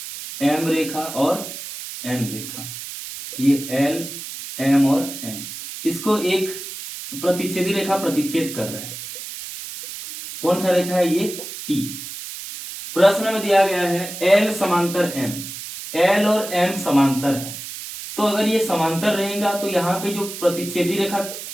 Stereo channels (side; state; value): right; noise; hiss, 10 dB below the sound